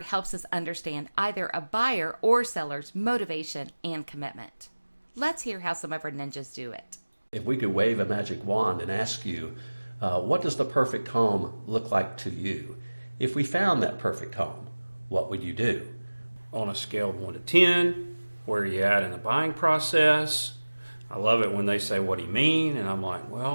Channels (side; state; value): both; inverted; correlation -1.00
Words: helps us understand either a buyer or seller's motivation and commitment. Let's hear how some of our ninjas do it. If we could wave a magic wand and ask you, what does the perfect home look like to you? If we found that perfect home, what would you do? On a scale of 1 to 10, where are you at in the buying process? I love it when they say, what do you mean? And I'm like,